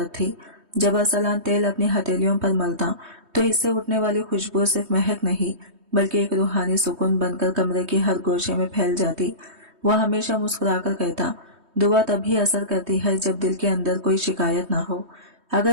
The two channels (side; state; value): left; late; 3.2 ms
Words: थी। जब अरसलान तेल अपनी हथेलियों पर मलता तो इससे उठने वाली खुशबू सिर्फ महक नहीं बल्कि एक रूहानी सुकून बनकर कमरे के हर गोशे में फैल जाती। वह हमेशा मुस्कुराकर कहता, दुआ तभी असर करती है जब दिल के अंदर कोई शिकायत ना हो।